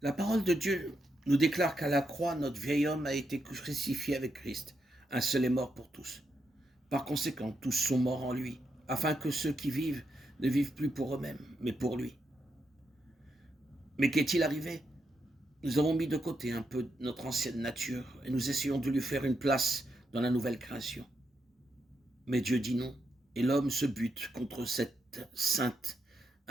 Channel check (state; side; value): normal; both; correlation 0.83